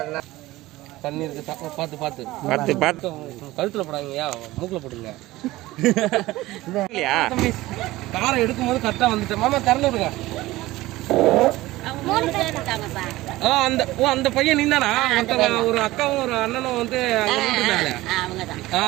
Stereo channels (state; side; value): quieter; left; 18.0 dB